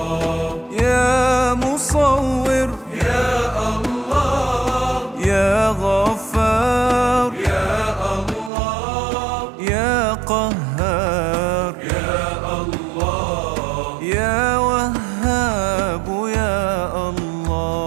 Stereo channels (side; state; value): left; drops out; at 8.5 s